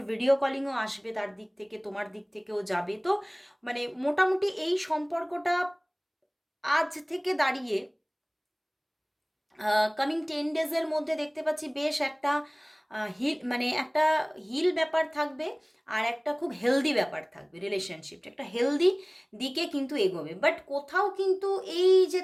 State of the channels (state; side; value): identical; both; correlation 1.00